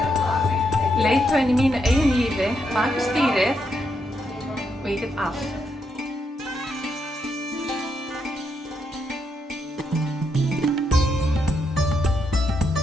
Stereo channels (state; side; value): normal; both; correlation 0.79